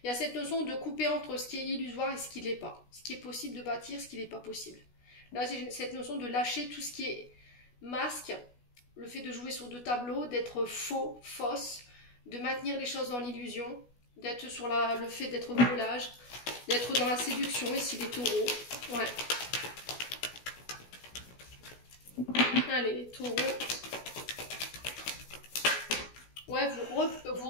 Il y a cette notion de couper entre ce qui est illusoire et ce qui ne l'est pas. Ce qui est possible de bâtir, ce qui n'est pas possible. Là, c'est cette notion de lâcher tout ce qui est masque, le fait de jouer sur deux tableaux, d'être faux, fausse, de maintenir les choses dans l'illusion, d'être sur le fait d'être volage, d'être dans la séduction, ici les taureaux. Ouais. Allez, les taureaux. Ouais, vous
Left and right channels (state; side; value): late; right; 16 ms